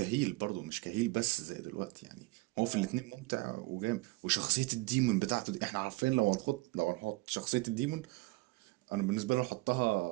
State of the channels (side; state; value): left; quieter; 23.4 dB